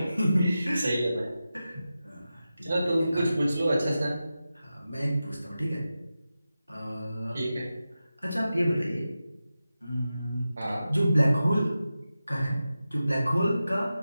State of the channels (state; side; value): inverted; both; correlation -0.93